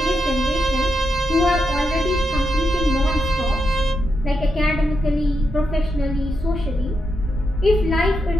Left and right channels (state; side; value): normal; both; correlation 0.84